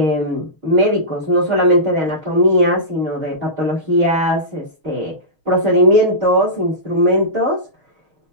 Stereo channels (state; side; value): late; left; 6.4 ms